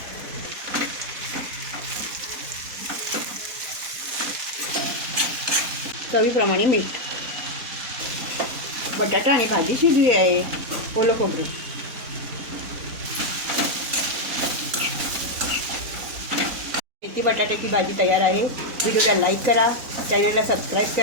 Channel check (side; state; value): left; late; 4.1 ms